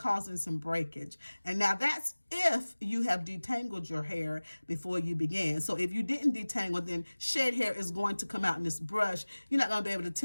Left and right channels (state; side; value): inverted; both; correlation -1.00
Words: some breakage. And now that's if you have detangled your hair before you began. So if you didn't detangle, then shed hair is going to come out in this brush. You're not going to be able to